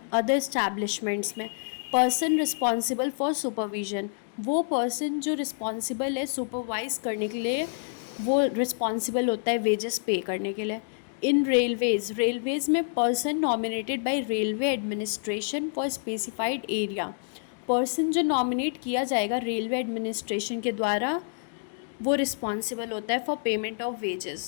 अदर इस्टेब्लिशमेंट्स में पर्सन रिस्पॉन्सिबल फॉर सुपरविजन, वो पर्सन जो रिस्पॉन्सिबल है सुपरवाइज करने के लिए, वो रिस्पॉन्सिबल होता है वेजेस पे करने के लिए। इन रेलवेज़ में person nominated by railway administration for specified area, person जो नॉमिनेट किया जाएगा रेलवे एडमिनिस्ट्रेशन के द्वारा वो रिस्पॉन्सिबल होता है for payment of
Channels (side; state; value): right; silent; digital silence